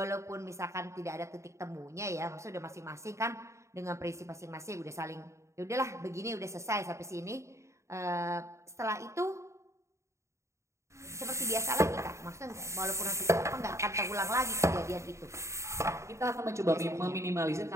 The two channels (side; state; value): left; late; 0.14 ms